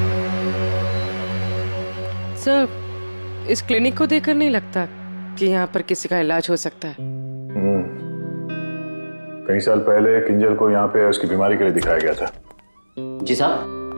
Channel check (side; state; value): both; inverted; correlation -1.00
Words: सर, इस क्लिनिक को देखकर नहीं लगता कि यहाँ पर किसी का इलाज हो सकता है। कई साल पहले किंजल को यहाँ पे उसकी बीमारी के लिए दिखाया गया था। जी साहब।